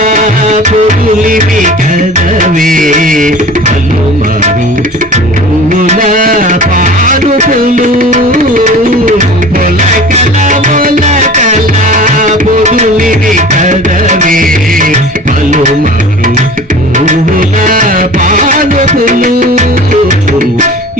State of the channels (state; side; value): normal; both; correlation 0.40